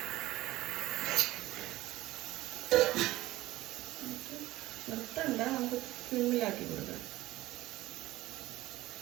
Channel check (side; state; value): left; quieter; 17.2 dB